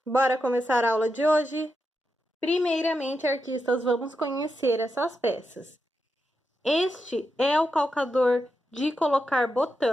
Bora começar a aula de hoje? Primeiramente, artistas, vamos conhecer essas peças. Este é o calcador de colocar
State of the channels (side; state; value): both; normal; correlation 0.86